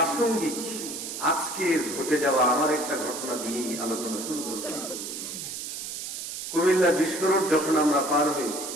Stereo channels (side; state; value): right; noise; hiss, 7 dB below the sound